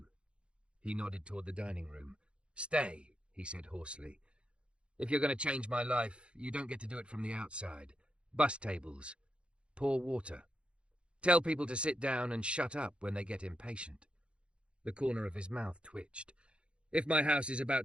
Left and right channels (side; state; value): left; late; 0.058 ms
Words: He nodded toward the dining room. "Stay," he said hoarsely. "If you're going to change my life, you don't get to do it from the outside. Bus tables. Pour water. Tell people to sit down and shut up when they get impatient." The corner of his mouth twitched. "If my house is